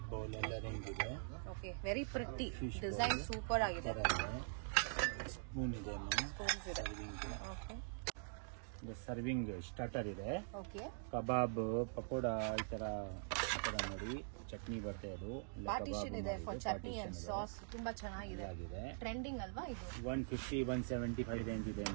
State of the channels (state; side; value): silent; left; digital silence